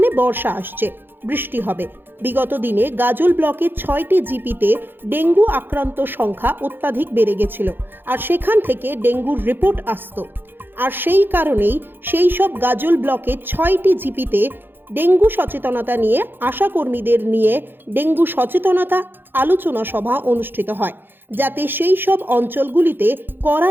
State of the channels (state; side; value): late; left; 0.099 ms